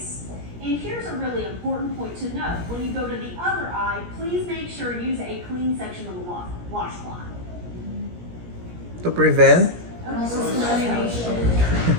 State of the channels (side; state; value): left; late; 17 ms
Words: And here's a really important point to note. When you go to the other eye, please make sure you use a clean section of the washcloth. To prevent? Cross-contamination.